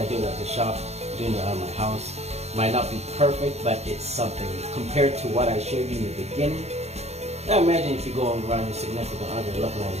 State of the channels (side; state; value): left; late; 0.31 ms